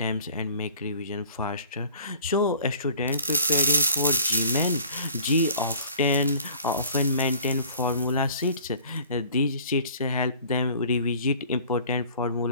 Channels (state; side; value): inverted; both; correlation -0.50